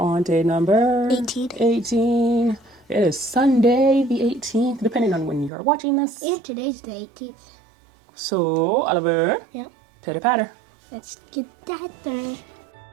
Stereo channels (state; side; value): drops out; left; at 5.5 s